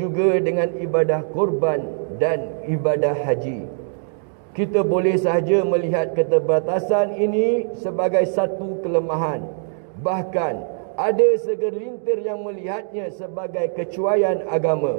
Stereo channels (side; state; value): left; silent; digital silence